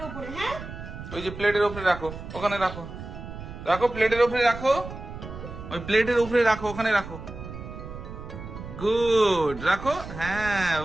উপরে। হ্যাঁ, ওই যে প্লেটের উপরে রাখো, ওখানে রাখো, রাখো প্লেটের উপরে রাখো, ওই প্লেটের উপরে রাখো, ওখানে রাখো। গুড, রাখো। হ্যাঁ,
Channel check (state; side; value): noise; right; rumble, 11 dB below the sound